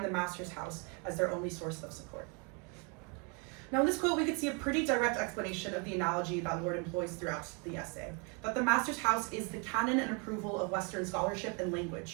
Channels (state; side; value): quieter; left; 34.4 dB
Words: the master's house as their only source of support." Now, in this quote, we could see a pretty direct explanation of the analogy that Lorde employs throughout the essay, that the master's house is the canon and approval of Western scholarship and